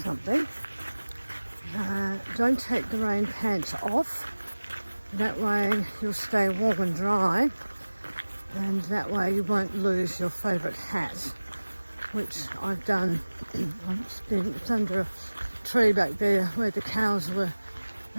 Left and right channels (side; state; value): both; inverted; correlation -1.00